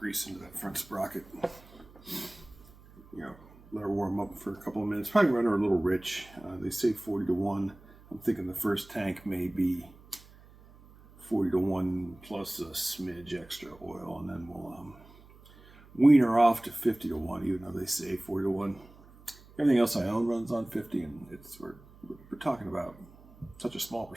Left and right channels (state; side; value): noise; right; hum, 23 dB below the sound